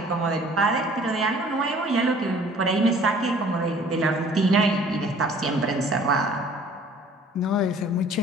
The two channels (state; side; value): normal; both; correlation 0.53